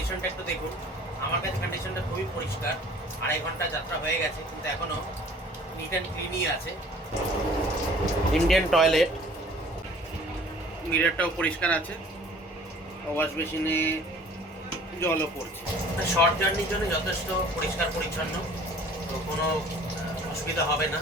একটু দেখুন। আমার কাছে কন্ডিশনটা খুবই পরিষ্কার। 2.5 ঘন্টা যাত্রা হয়ে গেছে, কিন্তু এখনও নিট অ্যান্ড ক্লিনই আছে। ইন্ডিয়ান টয়লেট, মিররটাও পরিষ্কার আছে, ওয়াশ বেসিনে জলও পড়ছে। শর্ট জার্নির জন্য যথেষ্ট পরিষ্কার পরিচ্ছন্ন, তো কোনো অসুবিধা হবে না।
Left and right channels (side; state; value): both; normal; correlation 0.50